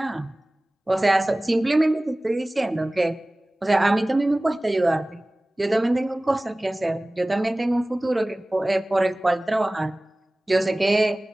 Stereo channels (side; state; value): both; normal; correlation 0.98